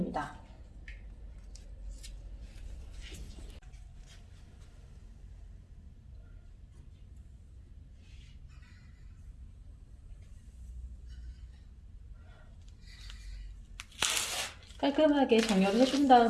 깔끔하게 정렬을 해준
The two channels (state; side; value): identical; both; correlation 1.00